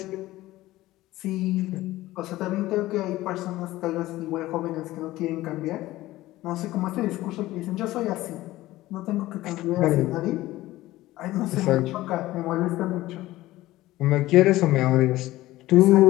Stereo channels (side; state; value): right; quieter; 16.8 dB